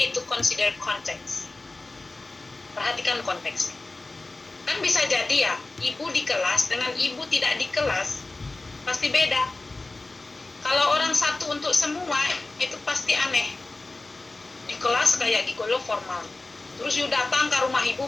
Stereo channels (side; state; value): right; quieter; 3.2 dB